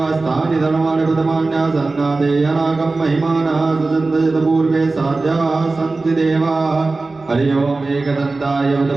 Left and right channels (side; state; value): left; quieter; 3.5 dB